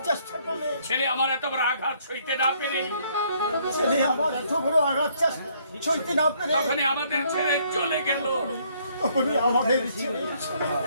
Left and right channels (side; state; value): both; inverted; correlation -0.66